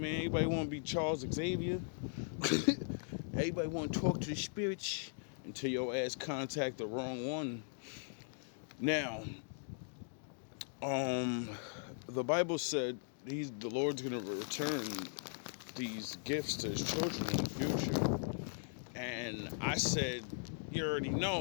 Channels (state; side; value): silent; right; digital silence